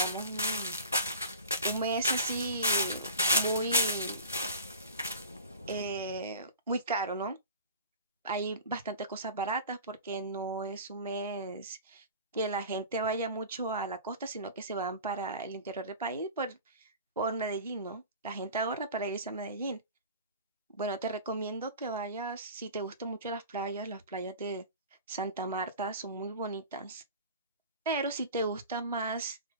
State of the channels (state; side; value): inverted; both; correlation -0.37